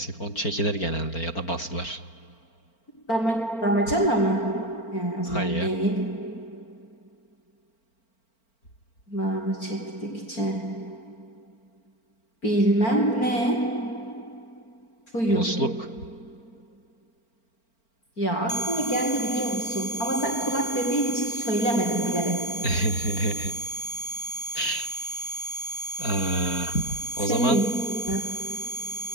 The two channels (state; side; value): late; right; 4.4 ms